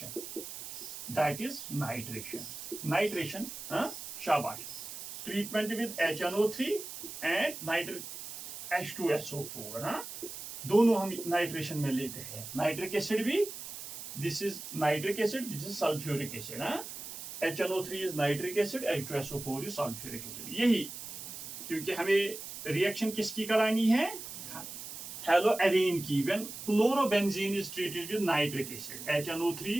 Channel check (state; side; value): noise; right; hiss, 10 dB below the sound